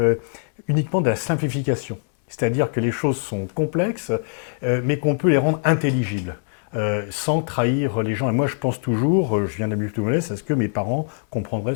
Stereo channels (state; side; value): silent; right; 64 dB below the other